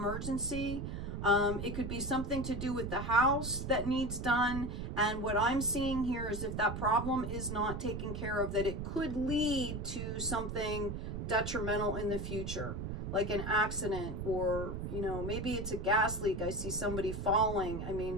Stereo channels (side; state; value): right; noise; rumble, 5 dB below the sound